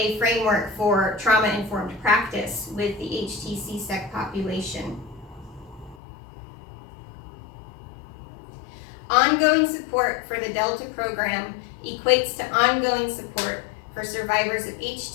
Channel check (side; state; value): right; drops out; at 6.0 s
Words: framework for trauma-informed practice with the HTC-SEC population. Ongoing support for the Delta program equates to ongoing support for survivors of